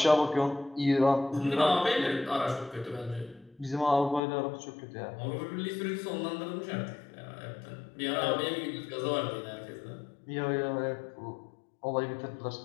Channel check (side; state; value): right; drops out; at 4.2 s